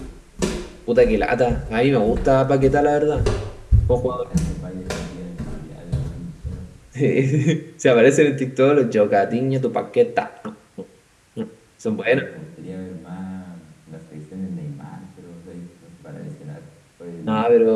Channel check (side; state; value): both; identical; correlation 1.00